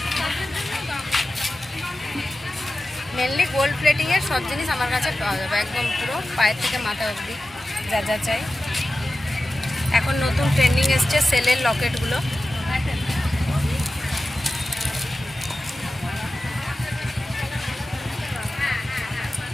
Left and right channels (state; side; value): normal; both; correlation 0.94